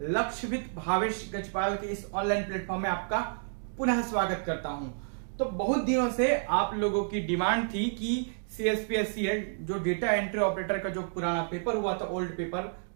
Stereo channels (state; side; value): silent; left; digital silence